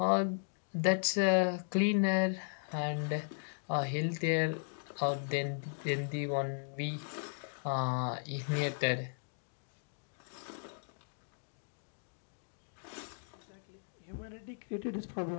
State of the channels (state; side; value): silent; right; digital silence